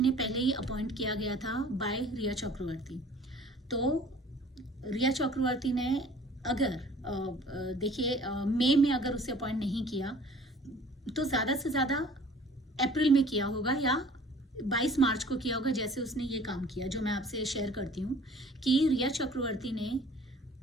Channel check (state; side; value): normal; both; correlation 0.50